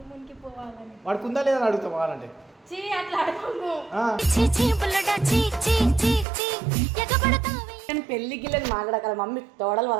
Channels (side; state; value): left; drops out; at 6.2 s